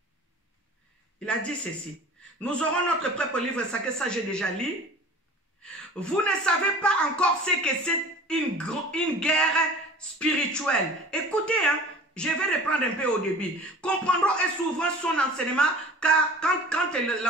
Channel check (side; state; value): both; normal; correlation 0.42